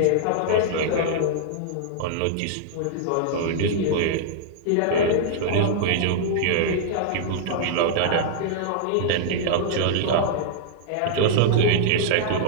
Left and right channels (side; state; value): both; different; correlation -0.01